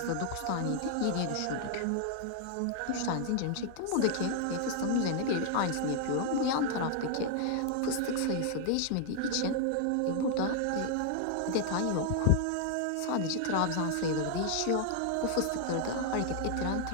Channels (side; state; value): both; different; correlation 0.00